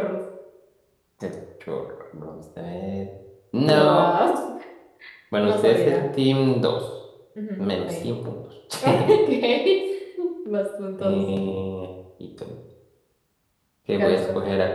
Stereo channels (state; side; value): identical; both; correlation 1.00